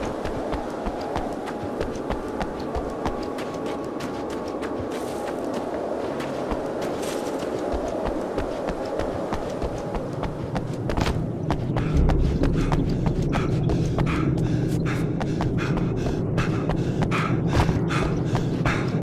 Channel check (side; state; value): both; identical; correlation 1.00